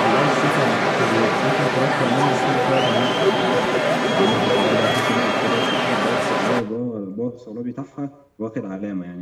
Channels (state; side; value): identical; both; correlation 1.00